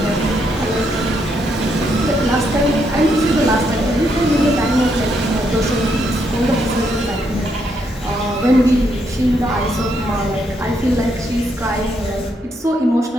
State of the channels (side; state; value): both; normal; correlation 0.76